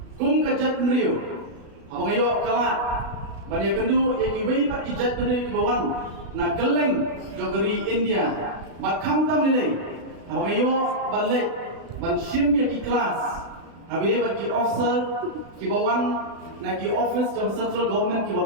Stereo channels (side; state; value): left; late; 36 ms